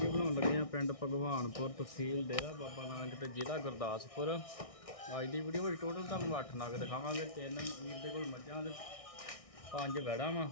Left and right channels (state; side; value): late; right; 1.6 ms